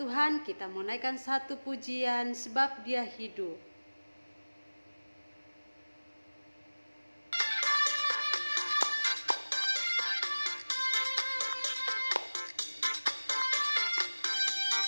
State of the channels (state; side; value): inverted; both; correlation -1.00